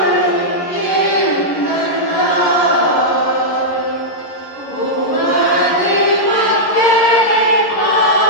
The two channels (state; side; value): late; right; 11 ms